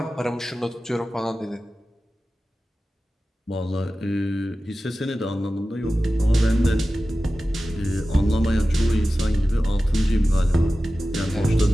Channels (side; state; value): both; normal; correlation 0.95